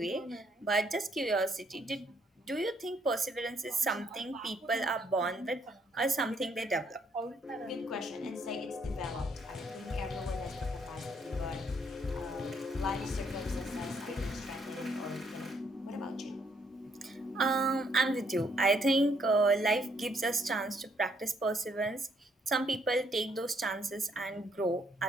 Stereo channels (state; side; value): normal; both; correlation 0.70